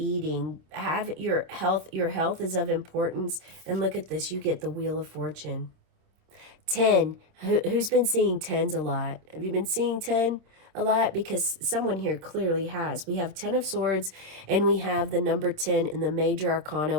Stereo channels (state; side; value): late; left; 27 ms